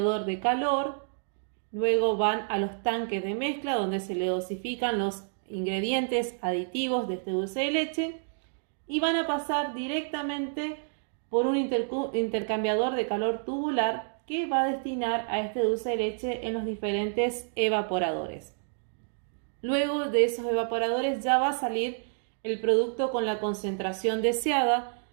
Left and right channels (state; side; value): silent; left; digital silence